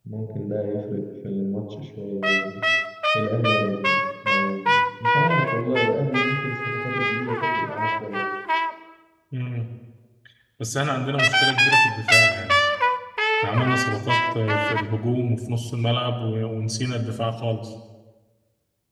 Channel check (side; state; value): both; identical; correlation 1.00